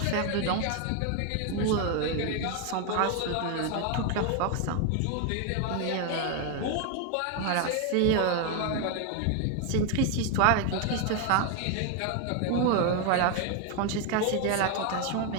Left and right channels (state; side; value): different; both; correlation 0.01